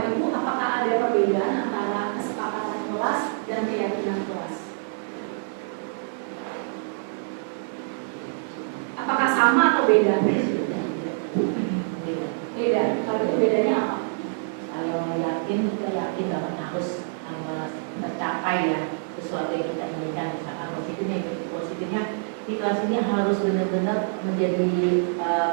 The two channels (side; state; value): left; silent; digital silence